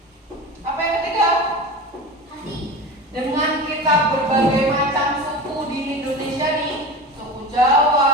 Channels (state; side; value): normal; both; correlation 0.30